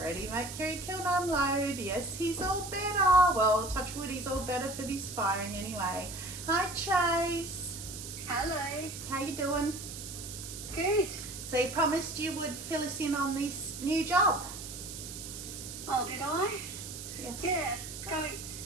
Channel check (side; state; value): right; noise; hiss, 10 dB below the sound